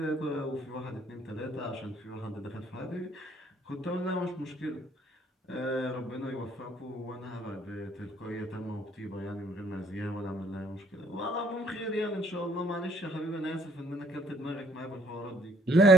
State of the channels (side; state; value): both; normal; correlation 0.63